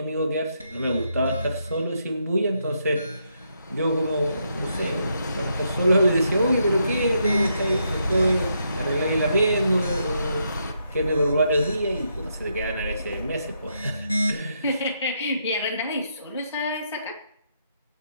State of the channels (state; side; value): inverted; both; correlation -0.78